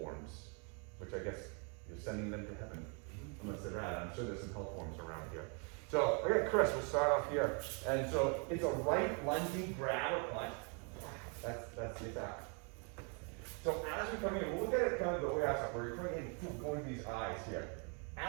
which I guess you're sending them to heaven. Unless they're rad. I'm sure there's some hell forms around here. So, okay, Chris, we'll start off here. And so it's a right lunging grab or punch. That's the attack. So as we come in, we'll look at it kind of the way I saw, where you're coming in, going to these eyes here.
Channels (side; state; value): left; quieter; 37.0 dB